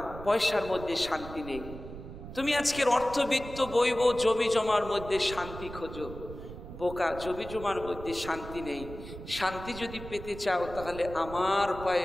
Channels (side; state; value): right; noise; rumble, 12 dB below the sound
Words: পয়সার মধ্যে শান্তি নেই। তুমি আজকের অর্থবিত্ত বৈব জমি জমার মধ্যে শান্তি খোঁজো, বোকা, জমি জমার মধ্যে শান্তি নেই। শান্তি যদি পেতে চাও তাহলে আমার